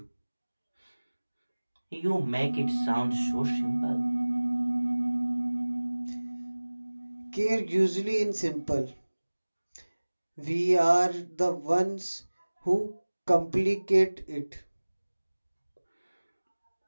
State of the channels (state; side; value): inverted; both; correlation -1.00